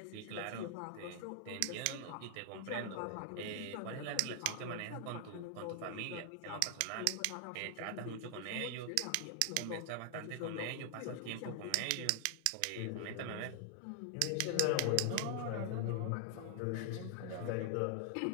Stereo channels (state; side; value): different; both; correlation 0.00